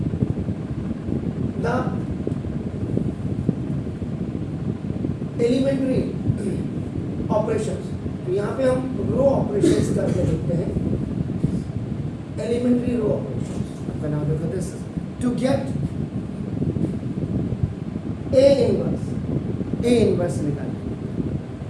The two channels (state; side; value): identical; both; correlation 1.00